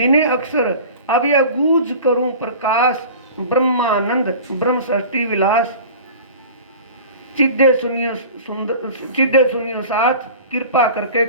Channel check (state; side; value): inverted; both; correlation -0.39